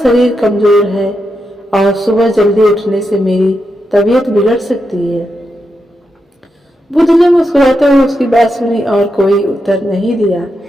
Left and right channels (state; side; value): normal; both; correlation 0.86